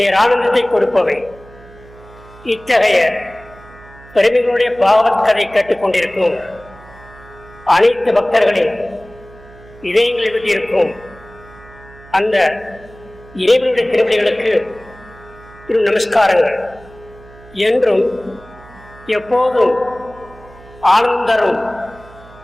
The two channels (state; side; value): noise; right; hum, 22 dB below the sound